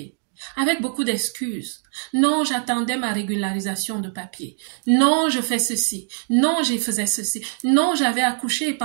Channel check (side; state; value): left; silent; digital silence